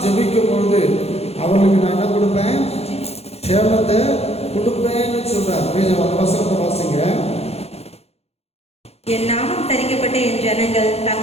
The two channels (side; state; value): right; late; 0.30 ms